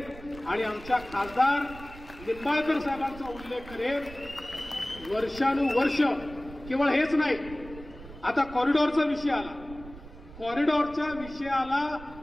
आणि आमच्या खासदार निंबाळकर साहेबांचा उल्लेख करेन. वर्षानुवर्ष केवळ हेच नाही, आता कॉरिडॉरचा विषय आला. कॉरिडॉरच्या विषयाला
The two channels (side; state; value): right; noise; rumble, 16 dB below the sound